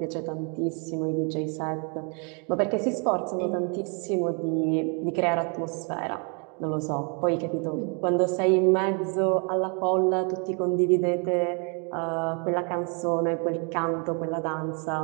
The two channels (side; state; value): left; quieter; 36.6 dB